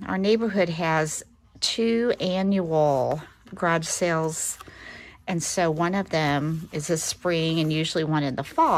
neighborhood has 2 annual garage sales, and so one of them is this spring and usually one in the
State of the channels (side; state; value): both; identical; correlation 1.00